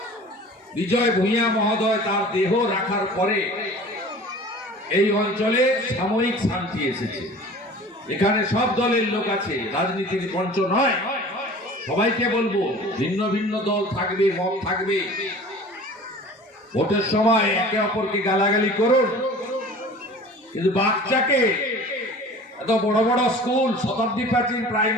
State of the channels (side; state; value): both; normal; correlation 0.43